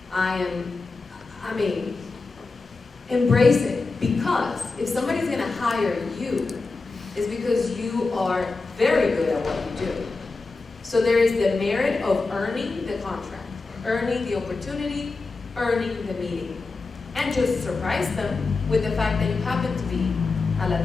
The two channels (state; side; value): quieter; right; 3.9 dB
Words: I mean, embrace it, because if somebody's gonna hire you, it's because you are very good at what you do. So there is the merit of earning the contract, earning the opportunity, earning the meeting, and just surprise them with the fact that you happen to be a